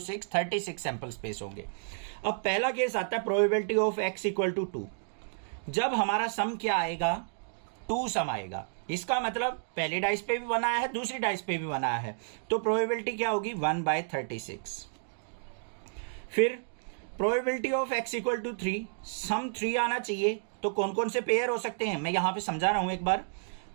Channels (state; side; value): silent; left; digital silence